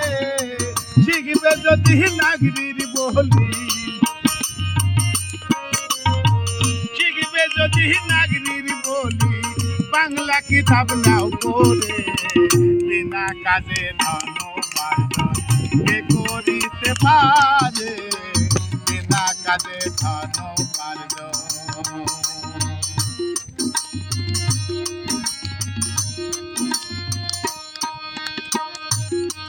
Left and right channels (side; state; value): both; identical; correlation 1.00